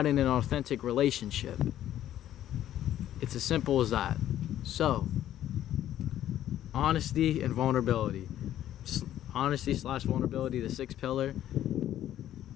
in an authentic relationship. It's as simple as that. So, honesty and vulnerability. Honesty/vulnerability, the sixth pillar.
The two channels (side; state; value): right; quieter; 12.1 dB